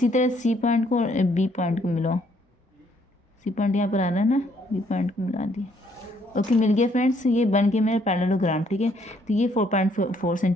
तरह सी पॉइंट को और बी पॉइंट को मिलाओ, सी पॉइंट यहाँ पर आ रहा है ना, बी पॉइंट को मिला दिए। ओके, मिल गया फ्रेंड्स, ये बन गया मेरा पैरेललोग्राम। ठीक है, तो ये 4.4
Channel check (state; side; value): normal; both; correlation 0.67